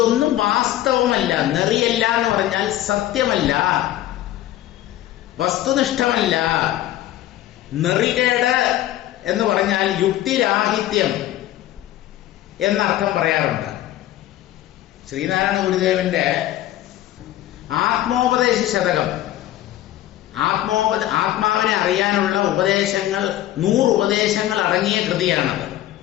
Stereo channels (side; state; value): right; quieter; 13.8 dB